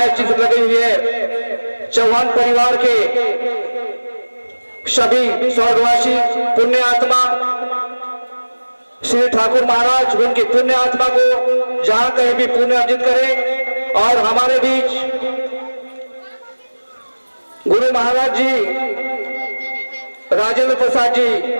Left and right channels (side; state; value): both; inverted; correlation -1.00